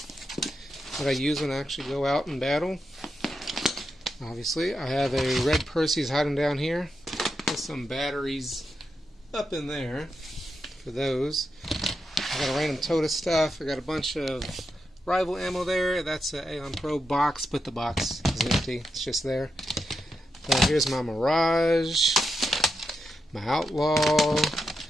what I use when I actually go out and battle. Obviously, I have a red Percy's hiding down here with some batteries up in there for those. I got a random tote of stuff. I got a bunch of rival ammo there. That's an Aeon Pro box, but the box is empty. It's just there. Here's my Mirage, my Outlaw,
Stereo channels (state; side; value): normal; both; correlation 0.86